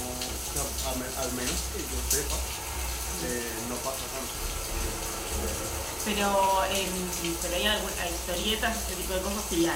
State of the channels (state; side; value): identical; both; correlation 1.00